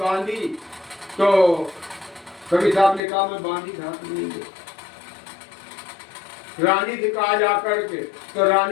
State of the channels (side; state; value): right; drops out; at 3.0 s